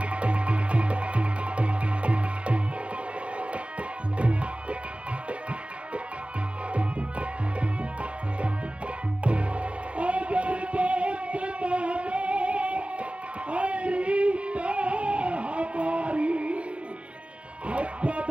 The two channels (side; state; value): left; late; 0.061 ms